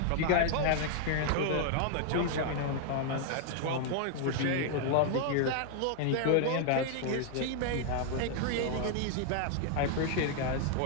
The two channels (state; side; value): different; both; correlation 0.00